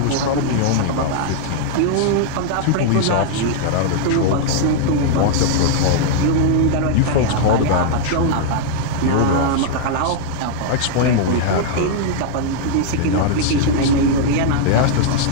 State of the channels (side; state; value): both; different; correlation -0.01